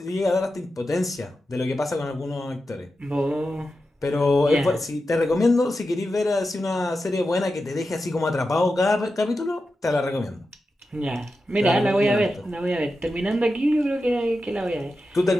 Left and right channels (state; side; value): normal; both; correlation 0.90